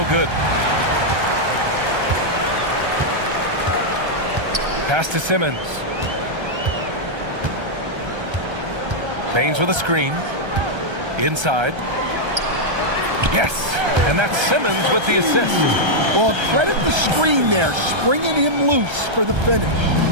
good. Pass to Simmons. Baines with a screen. Inside. Yes. And that's Simmons with the assist. Well, credit the screen there, springing him loose for the finish.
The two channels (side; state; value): left; late; 1.3 ms